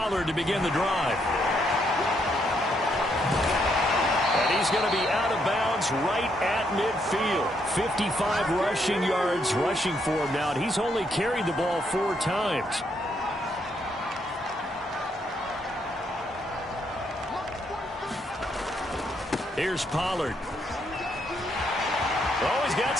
to begin the drive. And he's going to be out of bounds right at midfield. 55 rushing yards rushing for him now. And he's only carried the ball 4 times. Here's Pollard. Oh, he's got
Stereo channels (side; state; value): both; normal; correlation 0.75